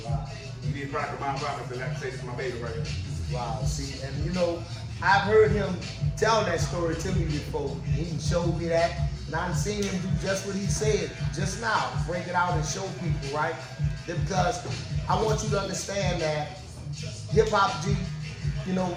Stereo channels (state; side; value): identical; both; correlation 1.00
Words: did Product of My Environment, and like I say, this is my baby right here. Wow, see, and you know, I've heard him tell that story to me before. He showed me that, and I've seen him do just what he said just now, break it out and show people, right? Because I want you to understand that Hip Hop G, you know,